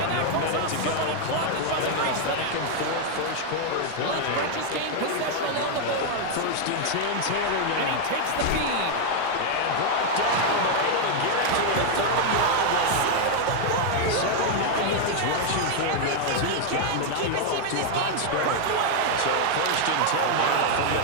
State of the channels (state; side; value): different; both; correlation 0.00